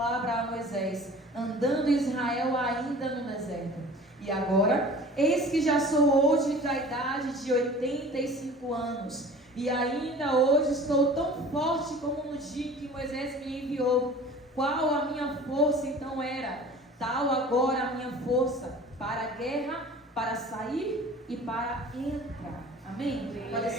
a Moisés, andando Israel ainda no deserto. E agora, eis que já sou hoje da idade de 85 anos, e ainda hoje estou tão forte como no dia em que Moisés me enviou. Qual a minha força então era? Tal agora a minha força para a guerra, para sair e para entrar. Amém? Pode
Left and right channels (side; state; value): both; normal; correlation 0.43